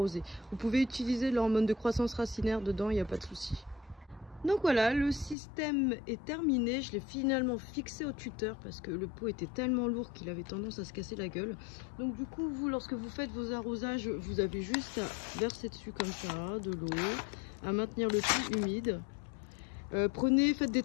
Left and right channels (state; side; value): drops out; right; at 5.4 s